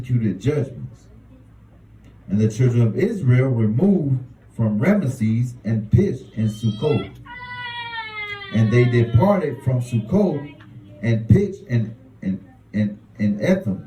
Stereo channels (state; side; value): identical; both; correlation 1.00